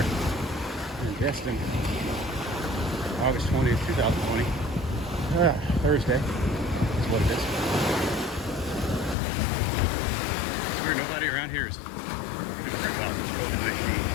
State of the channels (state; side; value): drops out; right; at 9.2 s